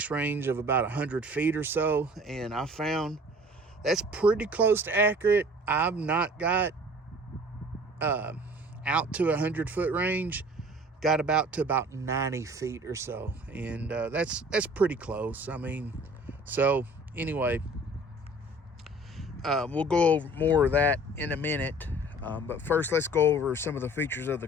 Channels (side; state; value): both; normal; correlation 0.48